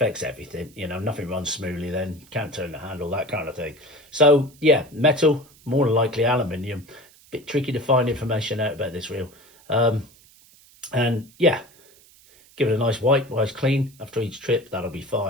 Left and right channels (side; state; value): right; noise; hiss, 27 dB below the sound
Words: everything, you know, nothing runs smoothly then, can't turn the handle, that kind of thing. So, yeah, metal, more than likely aluminium. Bit tricky to find information out about this reel. And, yeah, give it a nice wipe, nice clean after each trip, that'll be